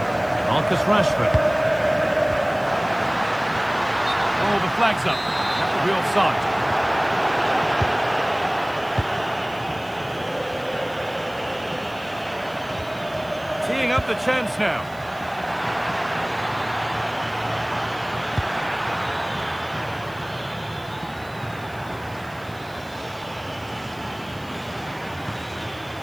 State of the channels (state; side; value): noise; right; hiss, 25 dB below the sound